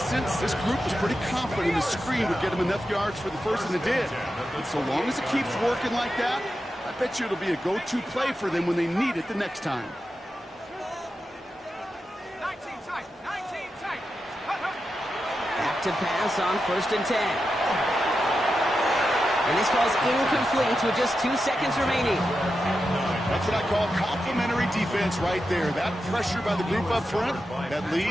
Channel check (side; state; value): both; normal; correlation 0.89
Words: this group was pretty confident the screen would get him enough yards for the first, and it did. And so long as it keeps working like that, I bet you it'll be a go-to play for them when they need it the next time. 19 tight. 19 tight. Back to pass on 1st and 10. And this falls incomplete with just 2 seconds remaining. That's what I call complimentary defense right there. That pressure by the group up front, that